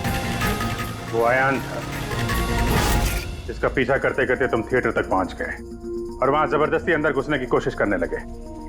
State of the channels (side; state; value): both; identical; correlation 1.00